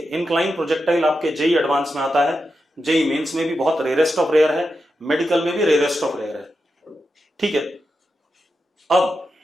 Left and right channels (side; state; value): both; normal; correlation 0.88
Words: इंक्लाइन प्रोजेक्टाइल आपके जेई एडवांस में आता है, जेई मेंस में भी बहुत रेयरेस्ट ऑफ रेयर है, मेडिकल में भी रेयरेस्ट ऑफ रेयर है। ठीक है,